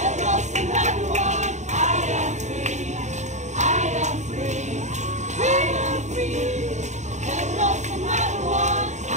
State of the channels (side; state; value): left; late; 0.34 ms